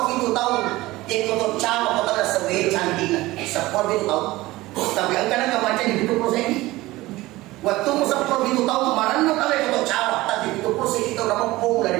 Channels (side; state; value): left; quieter; 18.7 dB